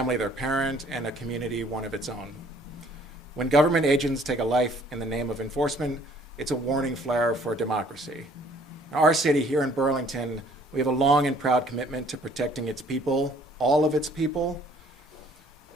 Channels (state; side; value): normal; both; correlation 0.59